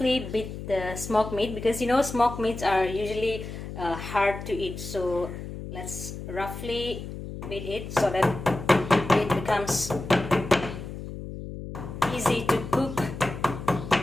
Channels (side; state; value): left; noise; hum, 9 dB below the sound